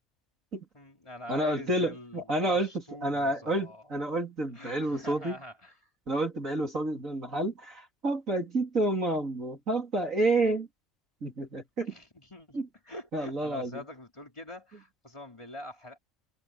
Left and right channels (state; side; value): normal; both; correlation 0.58